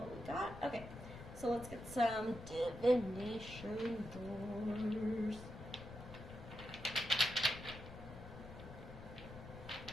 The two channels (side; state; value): left; noise; rumble, 12 dB below the sound